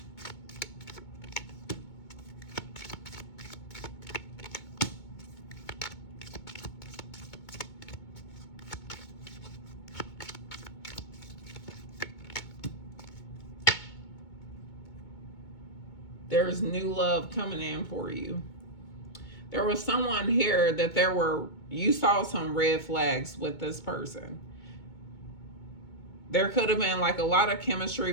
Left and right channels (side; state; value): right; late; 2.2 ms